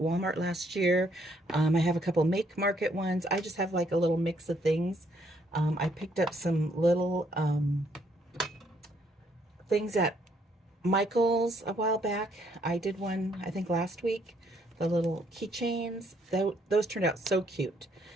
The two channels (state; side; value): normal; both; correlation 0.69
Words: last year. I have a couple Make Market ones. I just have like a little mix of things. I picked up some little things at Michael's a while back. I did one, I think, last week. The little keychains. Those turned out so cute.